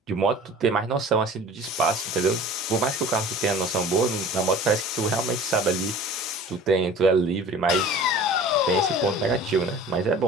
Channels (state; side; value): normal; both; correlation 0.43